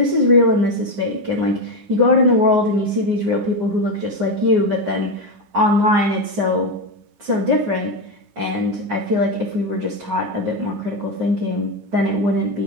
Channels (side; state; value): left; late; 9.6 ms